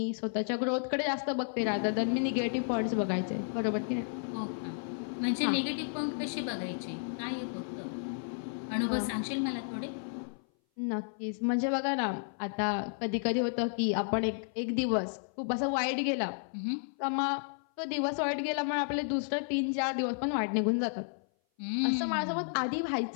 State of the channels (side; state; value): right; silent; 56 dB below the other